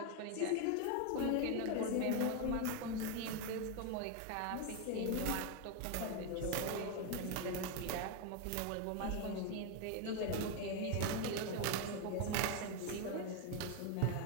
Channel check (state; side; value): different; both; correlation 0.01